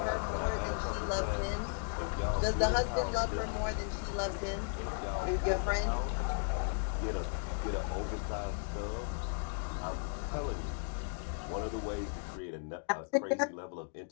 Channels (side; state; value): right; silent; 54 dB below the other